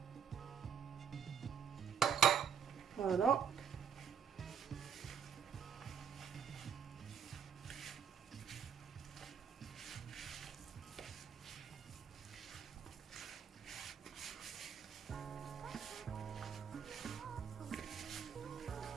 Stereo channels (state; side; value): quieter; left; 7.4 dB